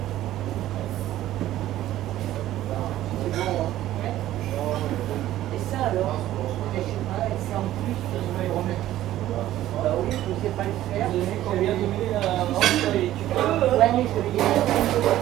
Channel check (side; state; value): left; quieter; 13.8 dB